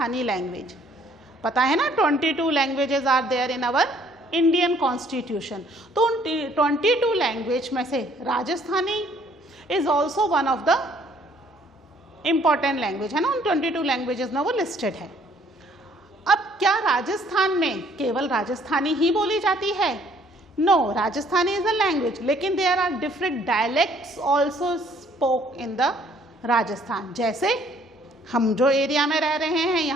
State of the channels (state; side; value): normal; both; correlation 0.61